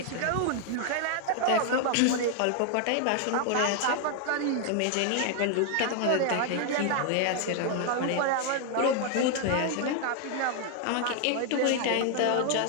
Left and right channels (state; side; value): different; both; correlation 0.00